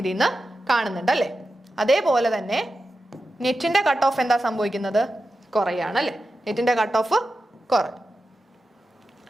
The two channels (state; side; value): normal; both; correlation 0.91